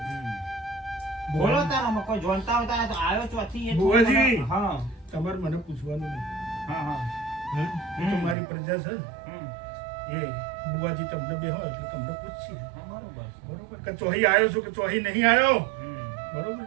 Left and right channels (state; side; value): drops out; left; at 8.3 s